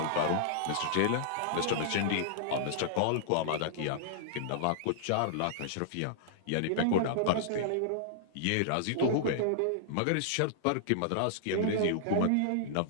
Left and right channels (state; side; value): different; both; correlation -0.02